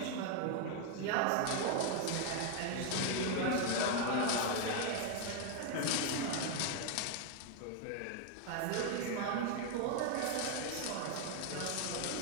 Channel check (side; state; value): both; different; correlation 0.01